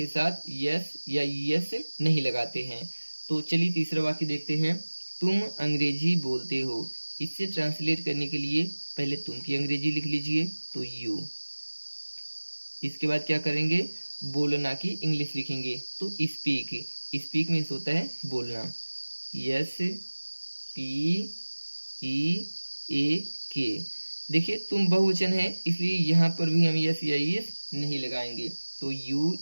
साथ यस या यस नहीं लगाते हैं। तो चलिए तीसरा वाक्य देखते हैं, तुम अंग्रेजी बोलते हो। इससे ट्रांसलेट करने के लिए पहले तुम की अंग्रेजी लिख लीजिए, तो यू। इसके बाद क्या करेंगे, बोलना की इंग्लिश लिखेंगे। तो स्पीक, स्पीक मीन्स होता है बोलना, SPEAK। देखिए तुम बहुवचन है इसलिए यहाँ पर भी हम यस या यस नहीं लगाएंगे। तो यू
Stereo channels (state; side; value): inverted; both; correlation -1.00